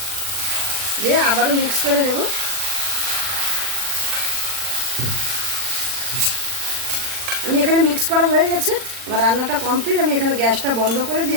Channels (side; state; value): left; late; 40 ms